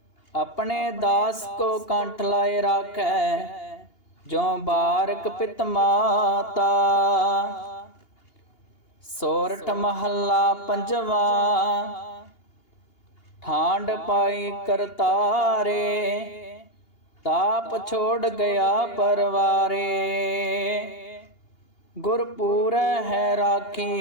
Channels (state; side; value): late; right; 2.8 ms